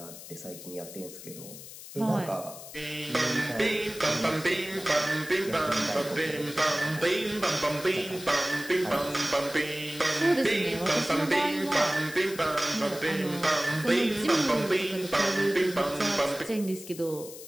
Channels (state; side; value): noise; left; hiss, 14 dB below the sound